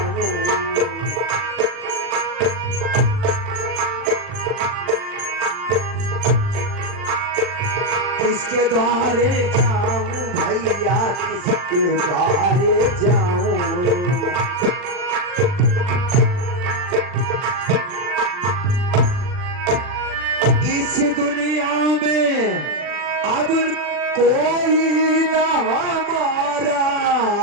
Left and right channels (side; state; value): left; late; 40 ms